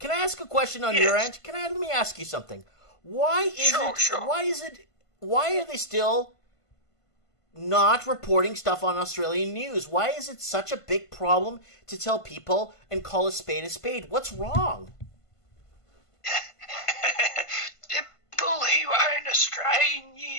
I ask a question on your end? Let me ask you something. Why are they still not reporting stuff on Australian news? Why is it such a big problem to tell people and call a spade a spade? What's wrong? People who own Australian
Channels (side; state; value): right; late; 1.5 ms